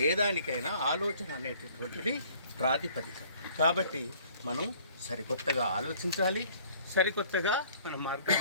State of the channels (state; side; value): inverted; both; correlation -0.56